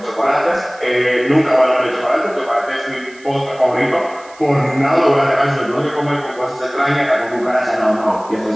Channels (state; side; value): noise; right; hiss, 25 dB below the sound